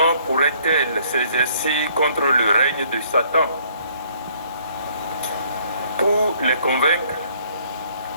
pourrait-elle s'exercer contre le règne de Satan? Pour les convaincre,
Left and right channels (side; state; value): both; inverted; correlation -0.62